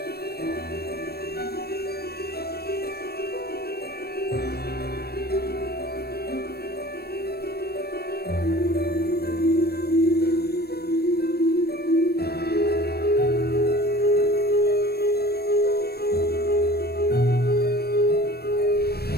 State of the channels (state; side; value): late; right; 0.46 ms